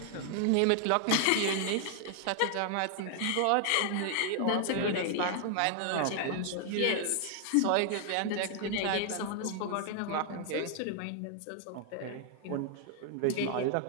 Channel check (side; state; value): both; different; correlation 0.00